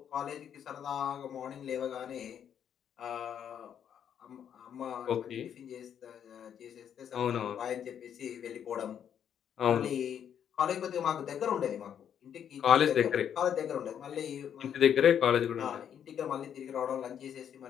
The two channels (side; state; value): right; quieter; 8.9 dB